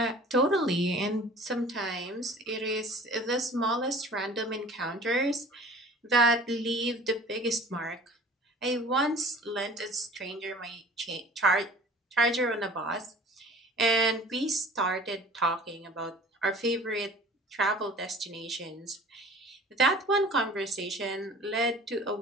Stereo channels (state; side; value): normal; both; correlation 0.46